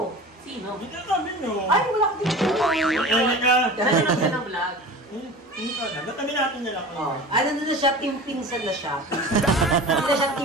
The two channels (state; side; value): normal; both; correlation 0.36